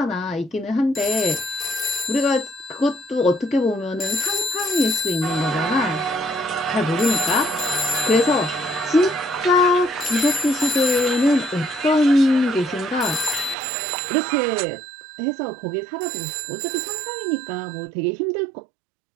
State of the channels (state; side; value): drops out; left; at 13.6 s